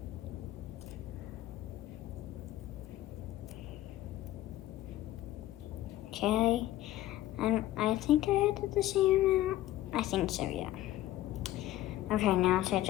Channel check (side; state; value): right; quieter; 14.6 dB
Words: Okay, and I think I added the same amount. I think so, yeah. Okay, now to